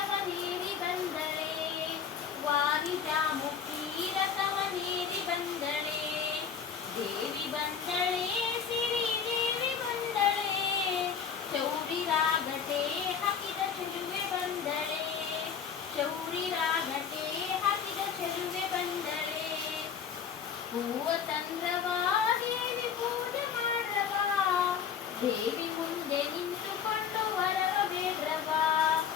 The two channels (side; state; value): right; quieter; 7.2 dB